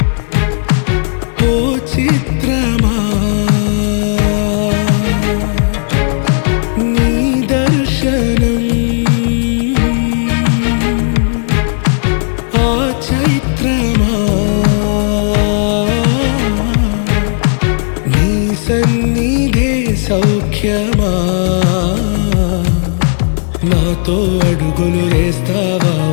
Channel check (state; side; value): silent; right; 71 dB below the other